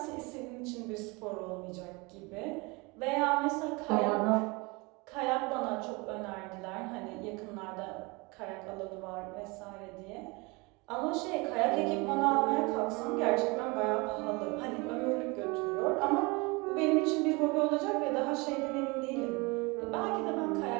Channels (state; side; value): quieter; left; 26.7 dB